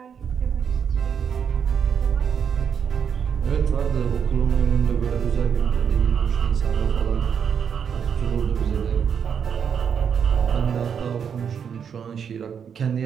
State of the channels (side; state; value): left; quieter; 7.4 dB